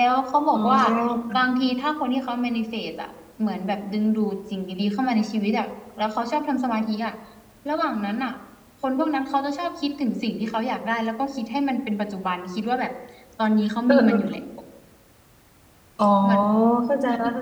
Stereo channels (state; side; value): identical; both; correlation 1.00